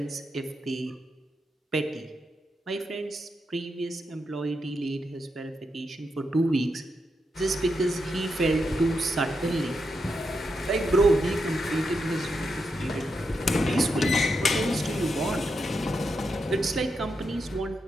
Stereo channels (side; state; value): both; normal; correlation 0.84